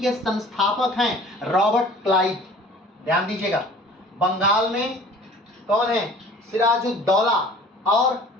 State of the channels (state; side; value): normal; both; correlation 0.48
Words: संस्थापक हैं रॉबर्ट क्लाइव। ध्यान दीजिएगा, बंगाल में कौन है? सिराजुद्दौला। और